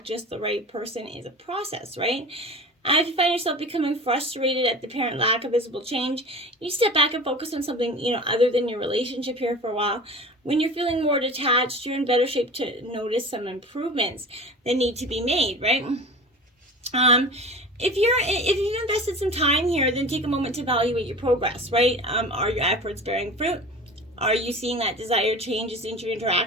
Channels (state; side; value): normal; both; correlation 0.36